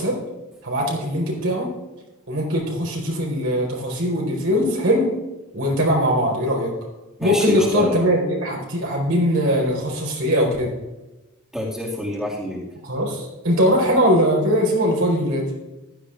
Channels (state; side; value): normal; both; correlation 0.21